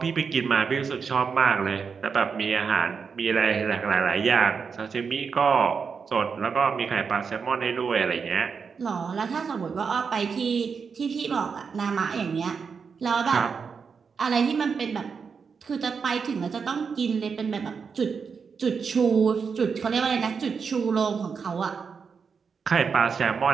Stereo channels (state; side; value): quieter; left; 5.8 dB